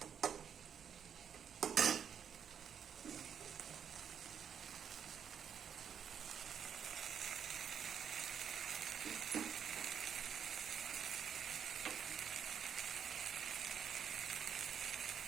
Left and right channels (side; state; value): left; quieter; 8.0 dB